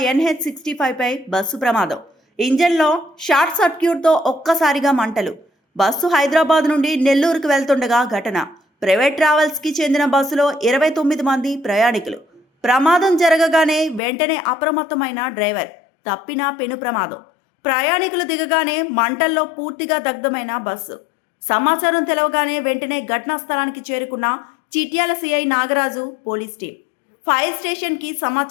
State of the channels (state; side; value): drops out; right; at 14.0 s